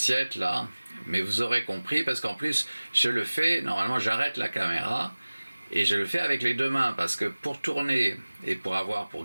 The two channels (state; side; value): inverted; both; correlation -1.00